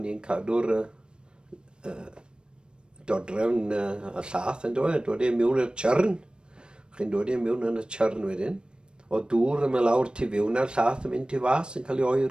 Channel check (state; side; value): late; left; 0.053 ms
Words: i'n cadw'r dodrefn y llath yn dod. Dod e mewn i'r tjyrn. Chi'n dod e mewn yn y tjyrn wedyn. O dŵr yma lawr tu fewn a'r llath yn mynd tu fas yn cael ei